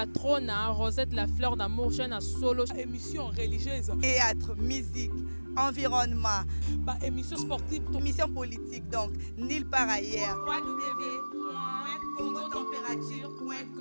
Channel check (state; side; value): inverted; both; correlation -1.00